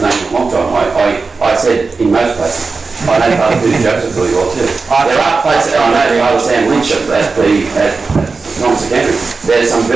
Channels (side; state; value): left; quieter; 4.3 dB